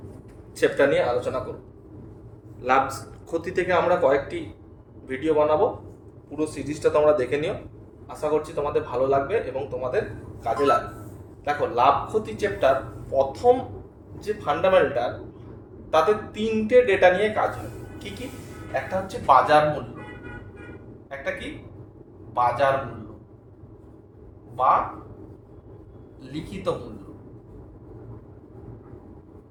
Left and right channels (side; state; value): both; identical; correlation 1.00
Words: চ্যাপ্টার নিয়ে আলোচনা করব। লাভ ক্ষতি থেকে আমরা কয়েকটি ভিডিও বানাবো, পুরো সিরিজটা তোমরা দেখে নিও। আশা করছি তোমাদের ভালো লাগবে এবং তোমাদের কাজে লাগবে। দেখো, লাভ ক্ষতি চ্যাপ্টার প্রথম যে ফান্ডামেন্টাল, তাতে তিনটে ডেটা নিয়ে কাজ হয়। কি কি? একটা হচ্ছে বাজার মূল্য, একটা কি বাজার মূল্য বা লিখিত মূল্য,